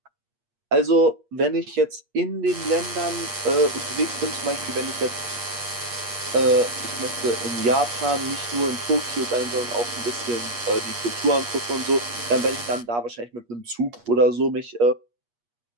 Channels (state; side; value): late; left; 8.5 ms